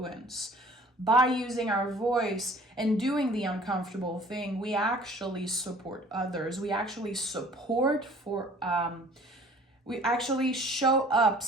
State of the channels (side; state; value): both; normal; correlation 0.51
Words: By using our voice and doing the uncomfortable thing, we actually support others. We actually we actually show up,